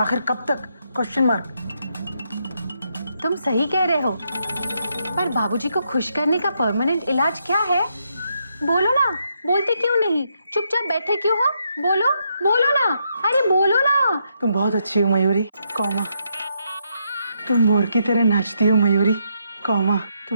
कब तक? Question mark. तुम सही कह रहे हो, पर बाबूजी को खुश करने का परमानेंट इलाज क्या है? बोलो ना, बोलते क्यों नहीं? चुपचाप बैठे क्यों हो? बोलो बोलो ना, अरे बोलो ना। तुम बहुत अच्छी हो मयूरी, कौमा। तुम मोर की तरह नाचती हो मयूरी, कौमा।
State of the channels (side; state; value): both; inverted; correlation -0.78